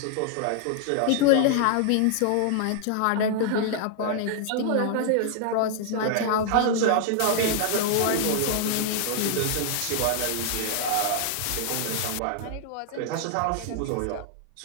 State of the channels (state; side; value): different; both; correlation 0.00